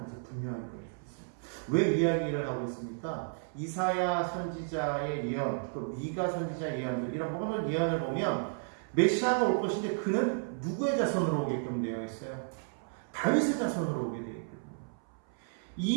분명하게 보여주고 있습니다. 왜 이야기를 하고 있습니까? 이사야 선지자의 예언, 또 미가 선지자의 예언들, 이런 모든 예언을 보면 메시아가 올 것인데 그는 누구의 자손으로 오게끔 되어 있어요? 다윗의 자손으로 오게 되어 있거든요.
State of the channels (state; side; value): silent; left; 56 dB below the other